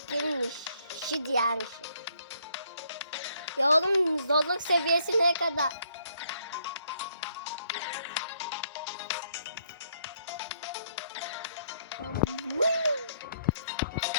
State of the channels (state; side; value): inverted; both; correlation -0.69